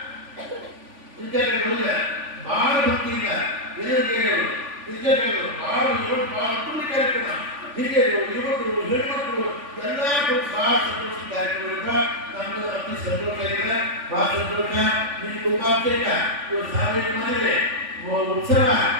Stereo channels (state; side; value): late; left; 3.5 ms